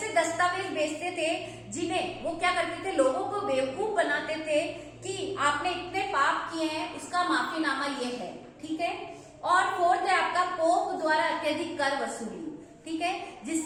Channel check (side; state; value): both; identical; correlation 1.00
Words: दस्तावेज बेचते थे जिन्हें वो क्या करते थे, लोगों को बेवकूफ बनाते थे कि आपने इतने पाप किए हैं, उसका माफीनामा ये है, ठीक है। और फोर्थ है आपका पोप द्वारा अत्यधिक कर वसूली, ठीक है।